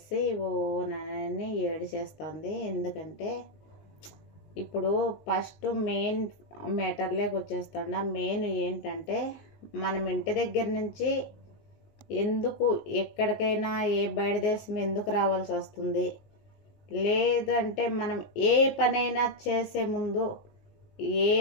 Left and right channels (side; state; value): right; late; 19 ms